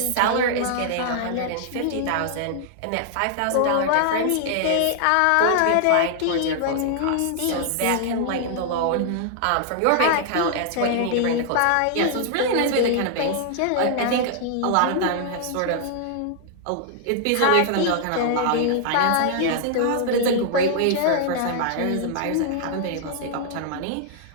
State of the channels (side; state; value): both; different; correlation -0.01